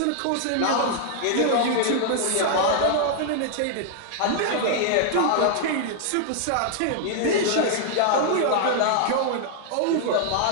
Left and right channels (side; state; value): both; different; correlation 0.00